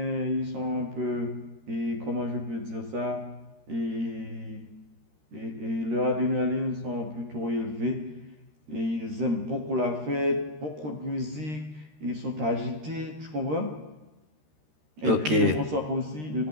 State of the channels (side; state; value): left; late; 13 ms